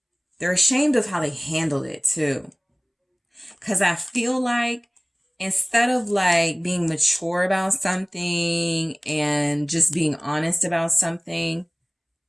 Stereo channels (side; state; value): both; identical; correlation 1.00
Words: They're ashamed of how they handled it too. Because I feel like instead of like being mature about something and just being honest about something,